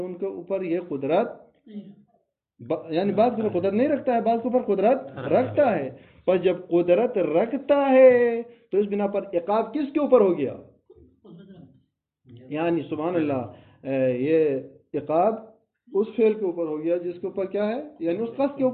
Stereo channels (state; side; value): identical; both; correlation 1.00